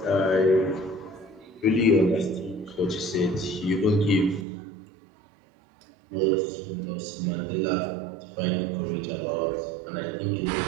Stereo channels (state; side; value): drops out; left; at 4.5 s